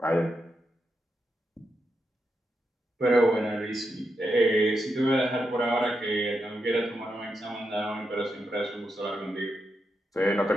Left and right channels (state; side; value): normal; both; correlation 0.85